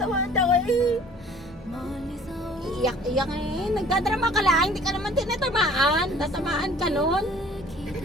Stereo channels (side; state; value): both; normal; correlation 0.52